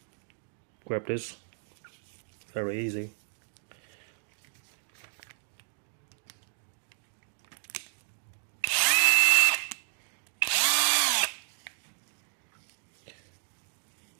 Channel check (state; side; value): silent; left; 56 dB below the other